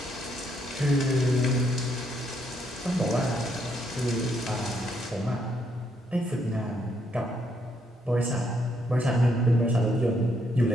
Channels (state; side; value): normal; both; correlation 0.74